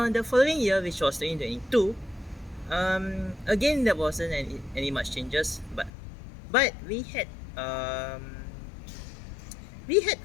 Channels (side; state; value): right; drops out; at 5.9 s